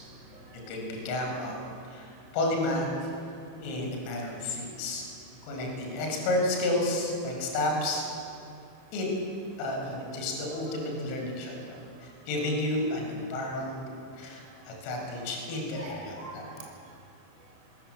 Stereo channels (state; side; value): late; right; 31 ms